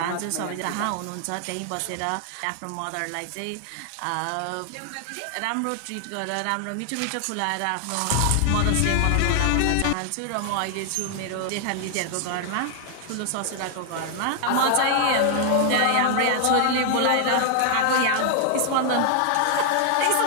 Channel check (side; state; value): both; different; correlation 0.00